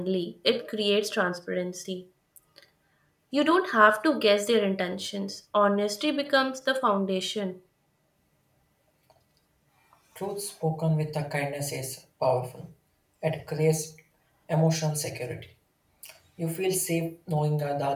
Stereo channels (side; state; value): both; identical; correlation 1.00